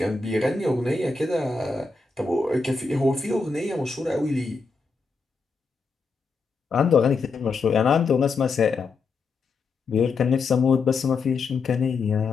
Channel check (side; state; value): right; quieter; 4.3 dB